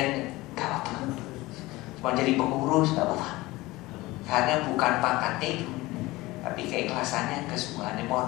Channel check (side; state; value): right; quieter; 20.0 dB